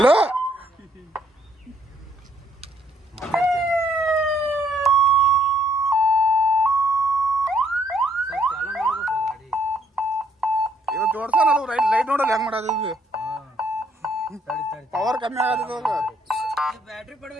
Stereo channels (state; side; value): normal; both; correlation 0.68